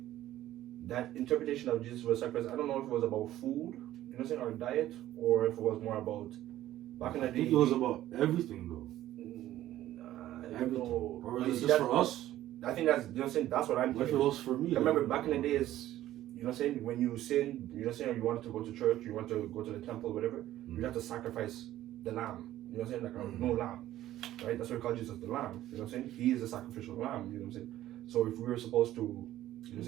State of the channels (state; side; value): quieter; left; 13.8 dB